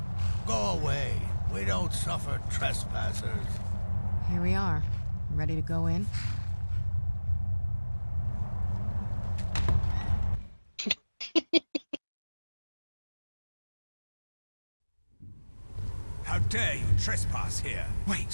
Go away. We don't suffer trespassers. Here we are. Ready to go in? How dare you trespass here?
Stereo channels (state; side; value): inverted; both; correlation -1.00